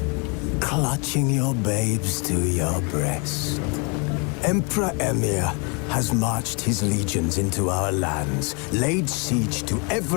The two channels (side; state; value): right; quieter; 33.7 dB